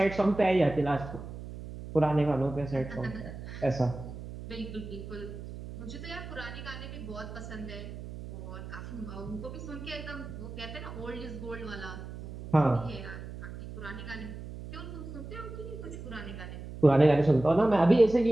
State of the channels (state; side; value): noise; right; hum, 11 dB below the sound